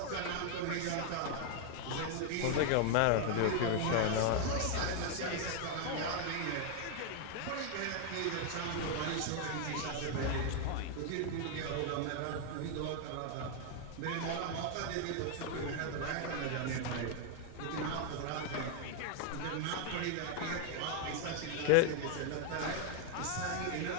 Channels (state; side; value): different; both; correlation 0.01